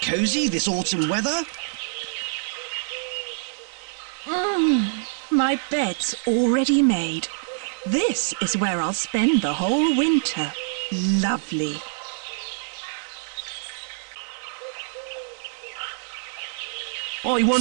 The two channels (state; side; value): silent; left; digital silence